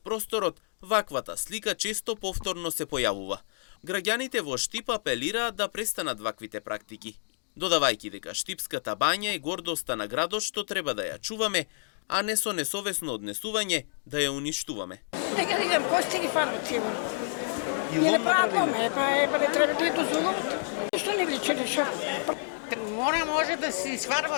просторот, ваквата слика често повторно се појавува. Граѓаните во Штип апелираат да престанат ваквите практики, додавајќи дека Штипската бања е гордоста на градот што треба да ја чуваме, а не со несовесно однесување да ја уништуваме. Нека видам кости ги фарбат сигурно. И не прават доме, па не треба да ја дозволуват. Што не личи нешто? Може да се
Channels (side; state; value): right; silent; digital silence